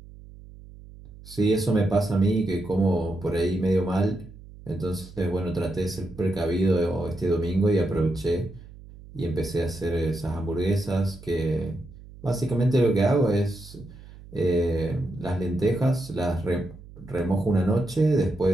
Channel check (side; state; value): right; noise; hum, 19 dB below the sound